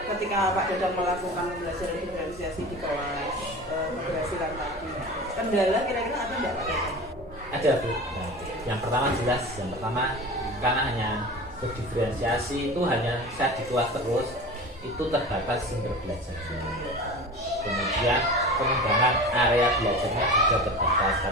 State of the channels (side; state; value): both; normal; correlation 0.34